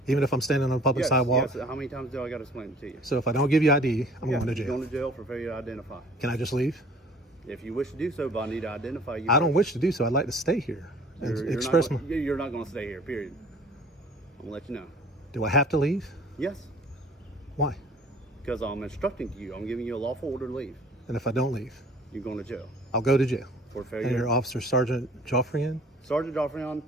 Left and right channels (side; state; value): both; normal; correlation 0.51